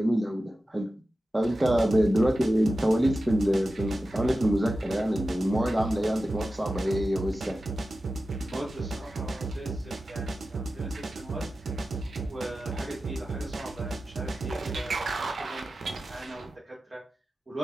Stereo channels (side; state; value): both; normal; correlation 0.93